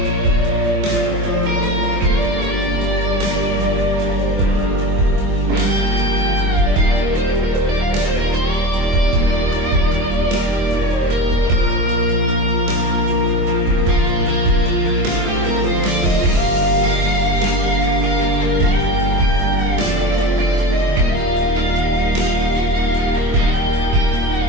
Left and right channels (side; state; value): left; late; 24 ms